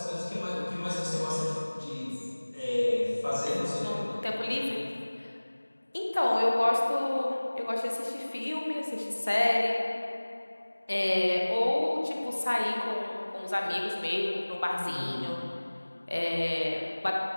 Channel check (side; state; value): both; inverted; correlation -1.00